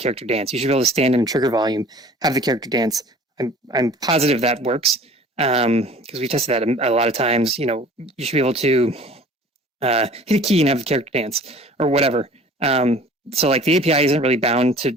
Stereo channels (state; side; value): normal; both; correlation 0.47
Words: dance. You should be able to stand in trigger volume, have the character dance. I'm positive that works. because we tested that a lot of times. You know, you should be able to hit a key and have the character dance or whatever. So like the API isn't really bound